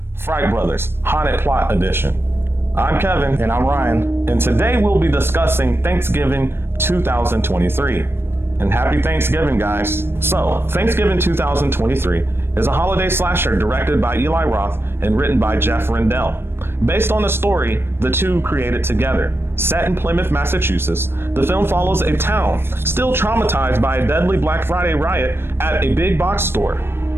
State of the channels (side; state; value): left; late; 0.11 ms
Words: Fright Brothers Haunted Plot Edition. I'm Kevin. And I'm Ryan. And today we'll be discussing Thanksgiving 2023. And happy Thanksgiving, guys. So, Thanksgiving 2023 is a holiday slasher directed by Eli Roth and written by Jeff Rendell. Based on a story the two created together. Set in Plymouth, Massachusetts, the film follows a town still traumatized by a deadly Black Friday riot at a big box store.